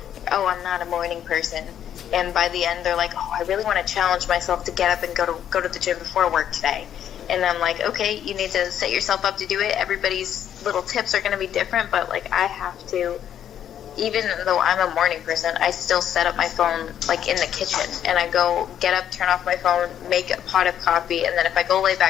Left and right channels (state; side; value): quieter; right; 9.9 dB